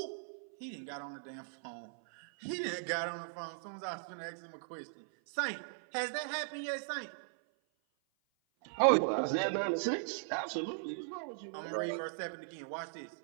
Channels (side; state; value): left; silent; 52 dB below the other